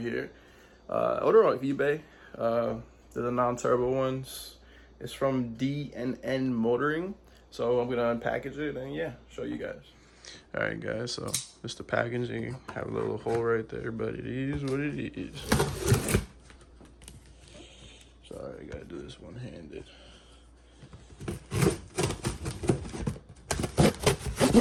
Order off eBay. They're the non-turbo ones. It's from DNL Motoring. So I'm gonna unpackage it and yeah, show you guys. All right, guys. So this the packaging. Have a little hole right there, but it is what it is. Sorry, I gotta do this one-handed.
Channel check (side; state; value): both; identical; correlation 1.00